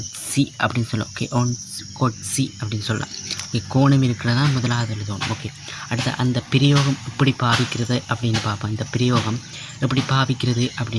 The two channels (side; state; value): both; identical; correlation 1.00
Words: C அப்படின்னு சொல்லலாம். ஓகே, ஒன் ஹாட் சி அப்படின்னு சொல்லலாம். ஓகே, கோணம் இருக்கிறதா முதலாவது எழுதணும். ஓகே, அடுத்த அந்த பிரயோகம் எப்படி பாவிக்கிறது அப்படின்னு பார்ப்போம். இந்த பிரயோகம் எப்படி பாவிக்கிறது